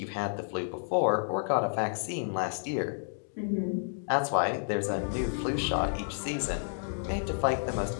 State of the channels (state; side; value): silent; right; digital silence